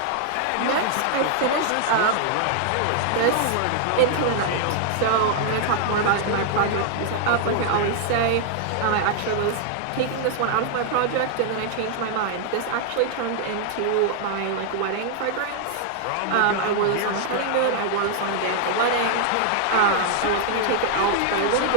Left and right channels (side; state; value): both; different; correlation -0.01